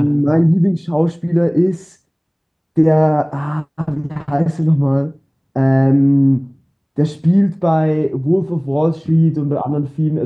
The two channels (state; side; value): identical; both; correlation 1.00